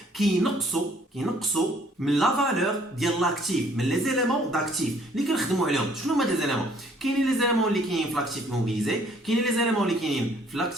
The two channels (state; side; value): normal; both; correlation 0.61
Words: qui n'ont كينقصوا من لا فالور ديال لاكتيف من لي زيليمون داكتيف اللي كنخدموا عليهم. شنو هما لي زيليمون؟ كاينين لي زيليمون اللي كاينين في لاكتيف موبيليزي، كاينين لي زيليمون اللي كاينين في